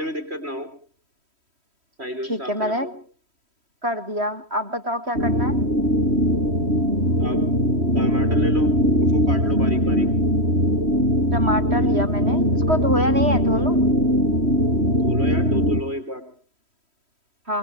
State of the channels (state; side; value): late; left; 3.1 ms